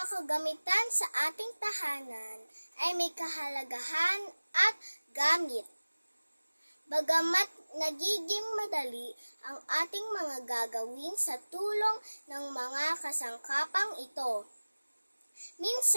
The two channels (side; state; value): both; inverted; correlation -1.00